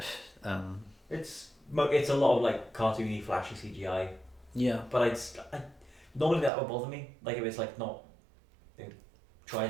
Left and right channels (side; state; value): left; drops out; at 6.5 s